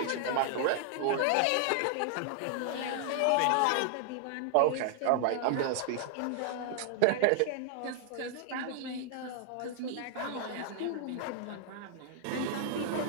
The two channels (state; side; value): different; both; correlation 0.00